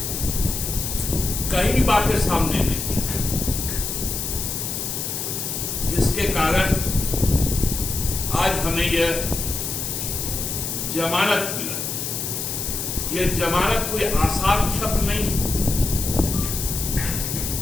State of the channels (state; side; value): noise; left; hiss, 3 dB below the sound